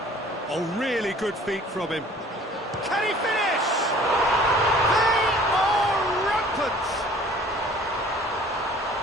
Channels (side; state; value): both; normal; correlation 0.51